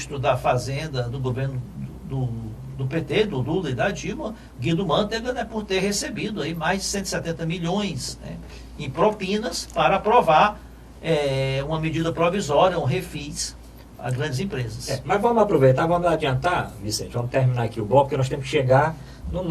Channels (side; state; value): both; identical; correlation 1.00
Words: da Fazenda do governo do PT, do Lula e da Dilma, Guido Mantega, né, por ter recebido aí mais de 170 milhões, né, em propinas para aprovar uma medida provisória, um refis a grandes empresas. Mas vamos aproveitar, vamos adiantar, Vicente, vamos terminar aqui o bloco, porque nós temos que chegar no